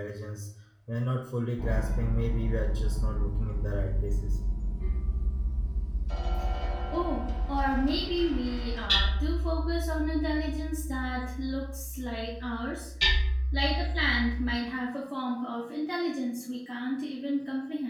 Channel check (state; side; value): identical; both; correlation 1.00